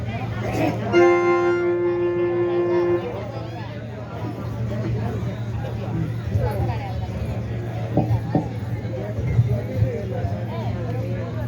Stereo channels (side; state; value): both; identical; correlation 1.00